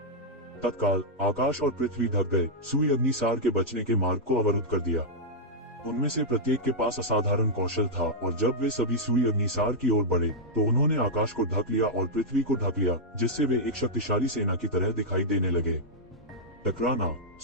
तत्काल आकाश और पृथ्वी ढक गए। सुई अग्निसार के बचने के मार्ग को अवरुद्ध कर दिया। उनमें से प्रत्येक के पास असाधारण कौशल था और जब वे सभी सुई अग्निसार की ओर बढ़े तो उन्होंने आकाश को ढक लिया और पृथ्वी को ढक लिया, जिससे वे एक शक्तिशाली सेना की तरह दिखाई देने लगे। टकराना।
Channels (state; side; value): normal; both; correlation -0.06